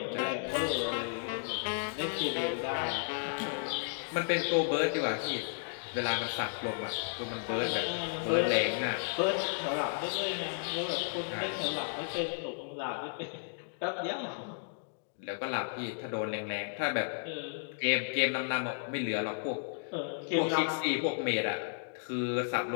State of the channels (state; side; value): silent; right; digital silence